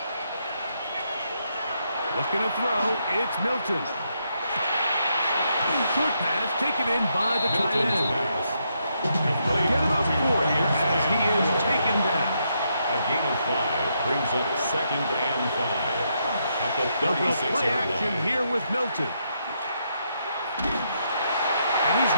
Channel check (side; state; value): both; inverted; correlation -0.78